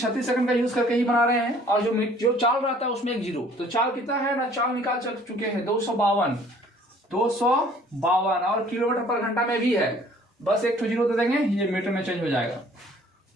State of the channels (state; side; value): normal; both; correlation 0.55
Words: सेकंड का यूज करके ही बना रहे हैं। और जो चाल रहता है उसमें एक जीरो, तो चाल कितना है ना, चाल निकाल चुके हैं 252 और किलोमीटर पर घंटा में भी है, बस एक जीरो दे देंगे, ये मीटर में चेंज हो जाएगा।